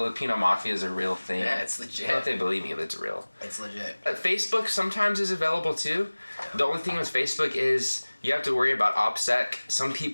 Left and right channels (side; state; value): both; inverted; correlation -1.00